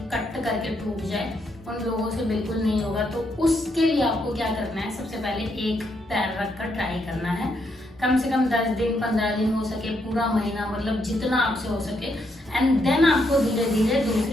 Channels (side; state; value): both; normal; correlation 0.77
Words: कट करके टूट जाए, उन लोगों से बिल्कुल नहीं होगा। तो उसके लिए आपको क्या करना है, सबसे पहले एक पैर रखकर ट्राई करना है। कम से कम 10 दिन 15 दिन हो सके, पूरा महीना, मतलब जितना आपसे हो सके। एंड देन आपको धीरे धीरे